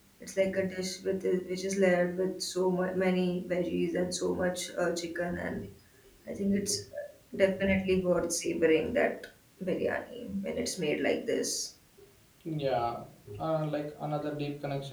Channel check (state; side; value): identical; both; correlation 1.00